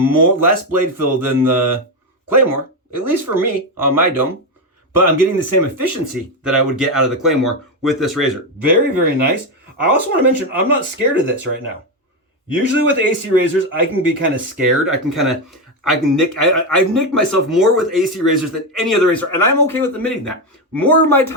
blade fill than the Claymore, at least for me on my dome, but I'm getting the same efficiency that I would get out of the Claymore with this razor. Very, very nice. I also want to mention, I'm not scared of this right now. Usually with AC razors, I can be kind of scared. I've nicked myself more with AC razors than any other razor, and I'm okay with admitting that. More of my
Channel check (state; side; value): normal; both; correlation 0.10